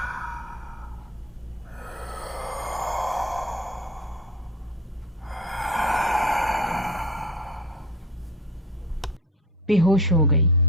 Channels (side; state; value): both; normal; correlation 0.34